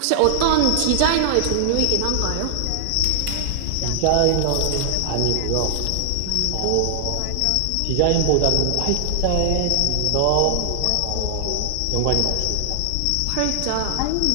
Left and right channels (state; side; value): different; both; correlation 0.00